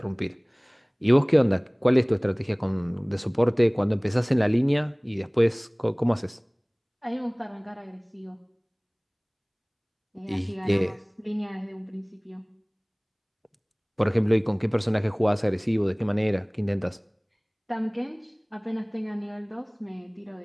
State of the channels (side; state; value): both; identical; correlation 1.00